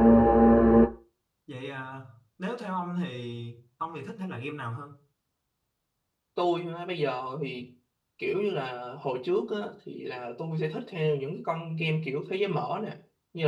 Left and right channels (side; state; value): both; identical; correlation 1.00